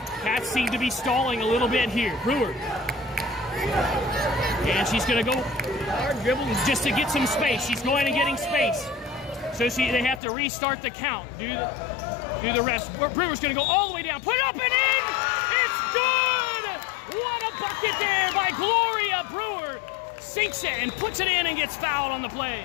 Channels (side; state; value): right; drops out; at 10.2 s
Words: Cats seem to be stalling a little bit here. Brewer. And she's going to go hard dribble just to get some space. She's going and getting space. So they have to restart the count. Do the rest. Brewer's going to go all the way down. Put it up and in! It's good! What a bucket there by Gloria Brewer. Sinks it and puts it in and gets fouled on the play.